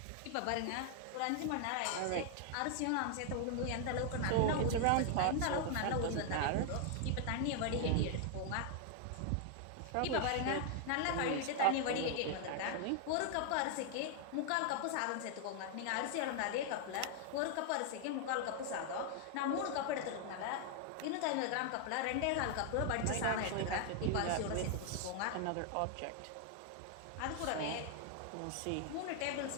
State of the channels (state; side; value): different; both; correlation 0.00